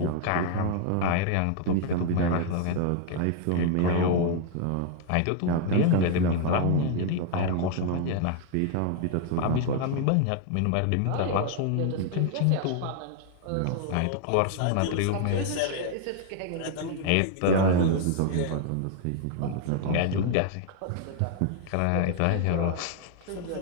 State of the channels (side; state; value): both; different; correlation 0.00